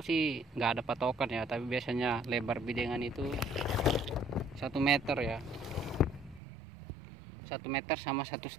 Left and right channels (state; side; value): drops out; left; at 6.4 s